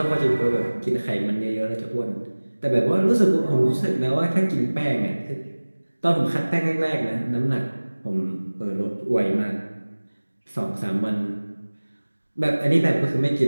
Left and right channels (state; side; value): inverted; both; correlation -1.00